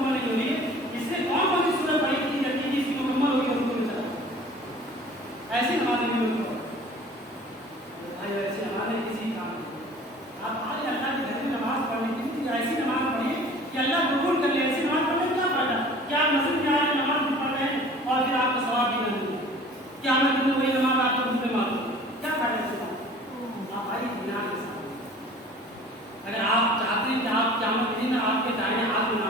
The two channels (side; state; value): both; normal; correlation 0.47